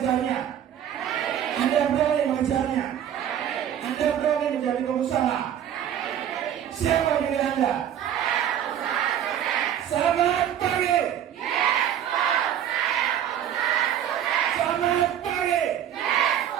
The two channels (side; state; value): left; quieter; 10.1 dB